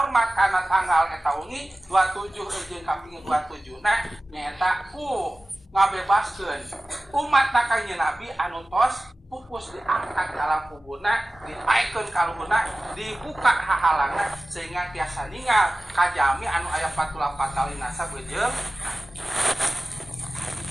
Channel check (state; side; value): normal; both; correlation 0.96